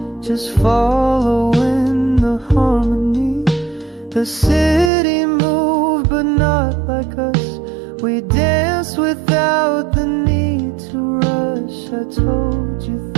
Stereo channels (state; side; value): drops out; left; at 4.9 s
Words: just following the harmony. The city moved but not like us. We danced without the need to rush. I told you